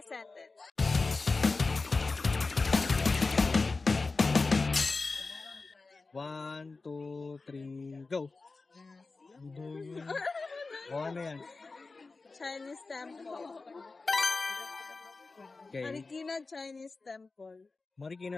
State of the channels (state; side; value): quieter; right; 3.8 dB